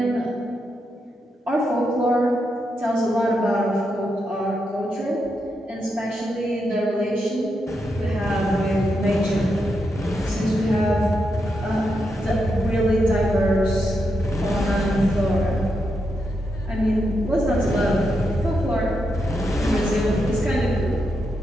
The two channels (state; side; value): normal; both; correlation 0.83